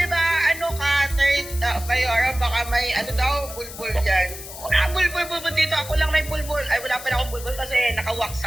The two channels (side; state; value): left; noise; hiss, 13 dB below the sound